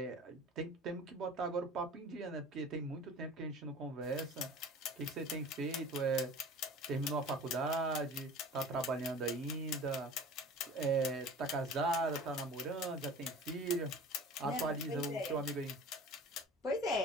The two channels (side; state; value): both; normal; correlation 0.41